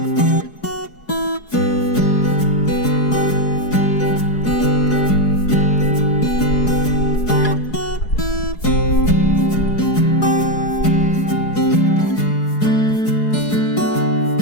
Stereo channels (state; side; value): late; right; 4.7 ms